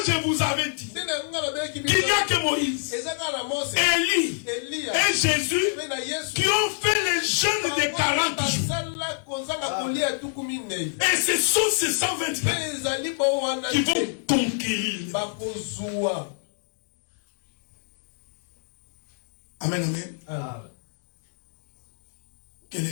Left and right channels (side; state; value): right; silent; 61 dB below the other